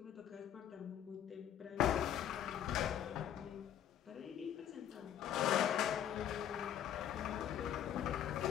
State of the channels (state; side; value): quieter; right; 10.2 dB